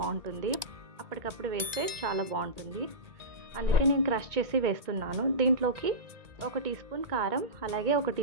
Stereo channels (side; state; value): left; late; 1.9 ms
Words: అప్పటికప్పుడు వేస్తే చాలా బాగుంటుంది, అందుకే నేను క్రష్ చేసి వేస్తున్నాను. దీంట్లోకి 1 టీ స్పూన్ కారం, అలాగే 1